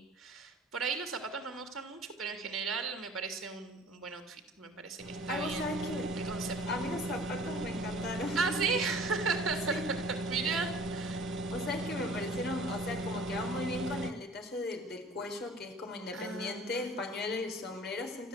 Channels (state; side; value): normal; both; correlation 0.48